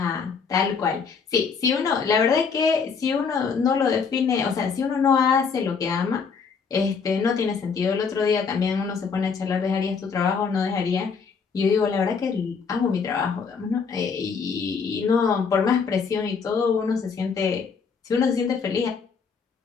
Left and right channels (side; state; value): right; quieter; 5.7 dB